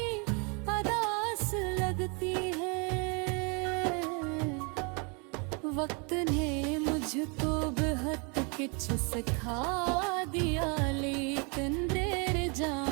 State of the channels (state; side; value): quieter; left; 33.3 dB